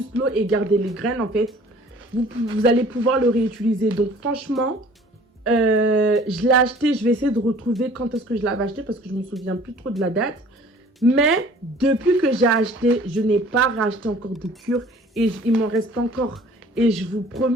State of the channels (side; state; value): both; normal; correlation 0.51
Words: l'eau et garder les graines, en fait, vous allez pouvoir le réutiliser. Donc, franchement, je l'ai acheté. Je vais essayer de retrouver quand est-ce que je l'avais acheté parce que je ne me souviens plus trop de la date. Mais depuis que j'ai acheté, je n'ai pas racheté encore de cure et il m'en reste encore. Et je vous